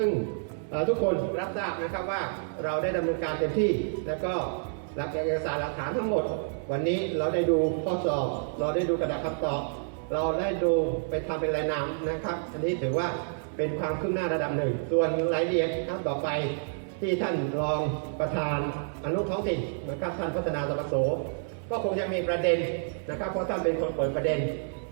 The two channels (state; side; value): silent; left; 59 dB below the other